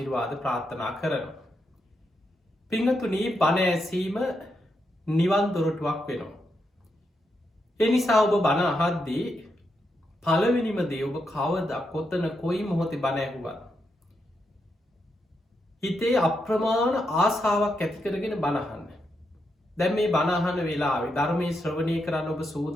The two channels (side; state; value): both; normal; correlation 0.83